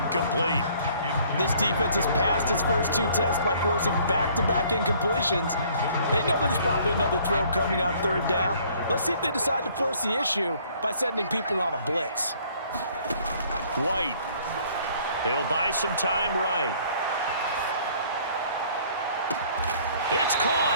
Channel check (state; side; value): inverted; both; correlation -0.58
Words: This defense has passed its first 2 tests by forcing back-to-back incompletions. They know there's probably another throw coming on 3rd down. Let's see if they decide to force the issue by sending people on a blitz. White. He'll buy some time right. It's